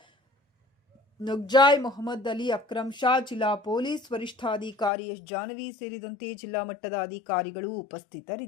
ನುಗ್ಜಾಯ್ ಮೊಹಮ್ಮದ್ ಅಲಿ, ಅಕ್ರಮ್ ಶಾ, ಜಿಲ್ಲಾ ಪೊಲೀಸ್ ವರಿಷ್ಠಾಧಿಕಾರಿ ಎಸ್ ಜಾನವಿ ಸೇರಿದಂತೆ ಜಿಲ್ಲಾ ಮಟ್ಟದ ಅಧಿಕಾರಿಗಳು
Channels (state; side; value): drops out; right; at 4.9 s